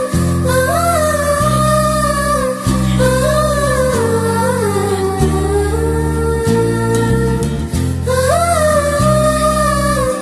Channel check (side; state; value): both; identical; correlation 1.00